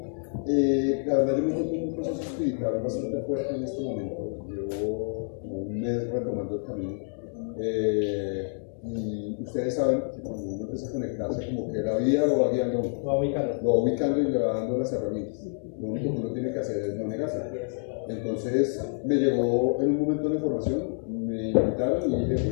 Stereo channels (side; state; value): right; silent; digital silence